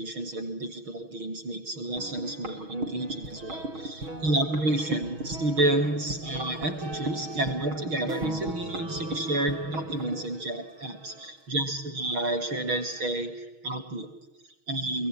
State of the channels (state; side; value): late; left; 6.3 ms